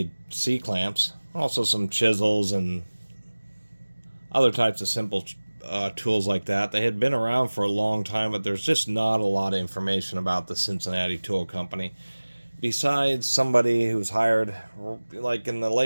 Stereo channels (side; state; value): both; inverted; correlation -1.00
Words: C-clamps, also some chisels and other types of simple tools like that. They had been around for a long time, but there's just not a lot of information about the Cincinnati Tool Company. Besides somebody who was hired like in the